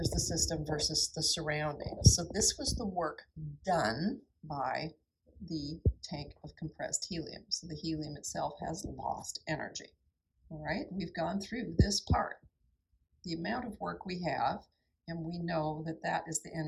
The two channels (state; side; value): identical; both; correlation 1.00